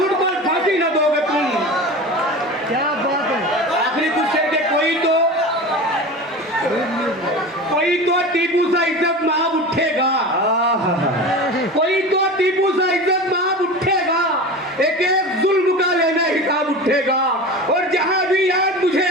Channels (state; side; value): normal; both; correlation 0.31